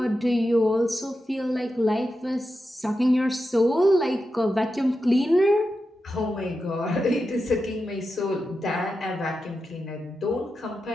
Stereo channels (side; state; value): both; normal; correlation 0.90